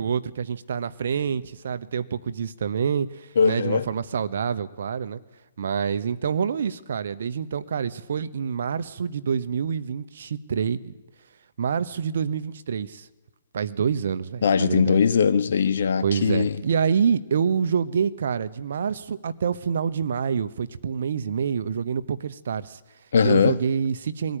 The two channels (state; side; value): inverted; both; correlation -0.73